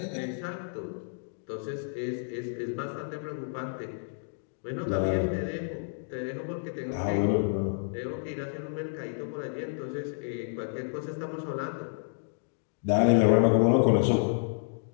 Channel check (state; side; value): silent; right; digital silence